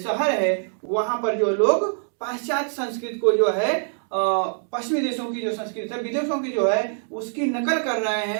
है, वहां पर जो लोग पाश्चात्य संस्कृति को जो है पश्चिमी देशों की जो संस्कृति है, विदेशों की जो है उसकी नकल कर रहे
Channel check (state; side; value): silent; left; digital silence